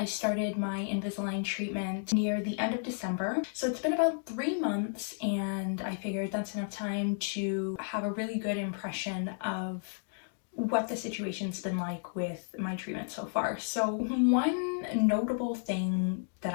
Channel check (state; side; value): silent; right; digital silence